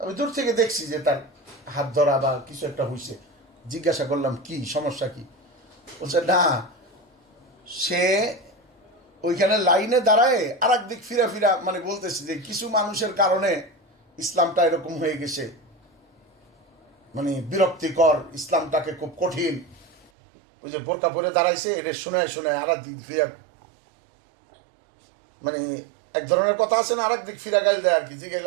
দূর থেকে দেখছি যে তার হাত ধরা বা কিছু একটা হয়েছে। জিজ্ঞাসা করলাম কি সমস্যা কি? বলছে না, সে ওইখানে লাইনে দাঁড়ায় আর একদিক ফিরা ফিরা মানে বলতেছে যে কিছু মানুষের কারণে ইসলামটা এরকম হয়ে গেছে, মানে বিরক্তিকর, ইসলামটাকে খুব কঠিন। ওই যে বোরকা পরে দাঁড়াইছে, এটা শোনায় শোনায় আর দিক ফিরা, মানে এক ধরনের কথা আছে না, আর এক দিক ফিরা গাইল দেয় আর কি, যে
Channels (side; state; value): left; drops out; at 20.1 s